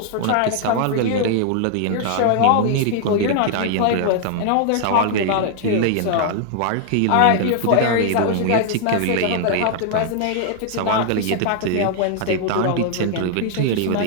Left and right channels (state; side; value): different; both; correlation 0.00